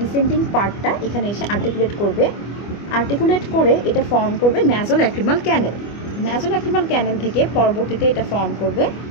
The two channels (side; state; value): right; late; 25 ms